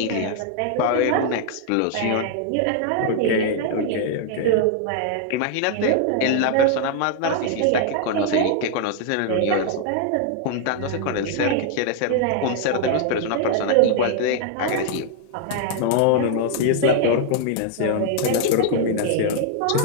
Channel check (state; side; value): different; both; correlation 0.00